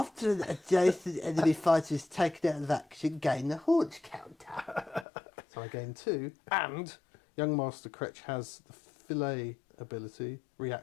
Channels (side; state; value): right; drops out; at 5.1 s